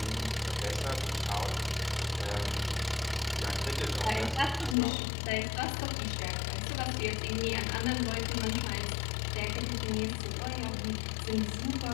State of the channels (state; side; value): drops out; right; at 4.8 s